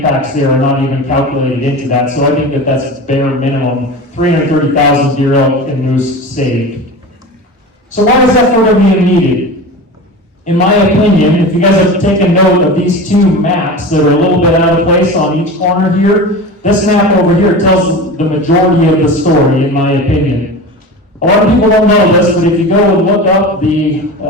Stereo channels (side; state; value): both; normal; correlation 0.31